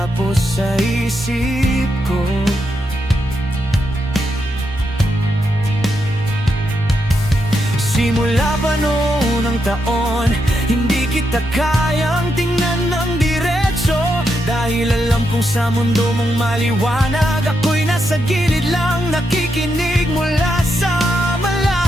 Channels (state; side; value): normal; both; correlation 0.82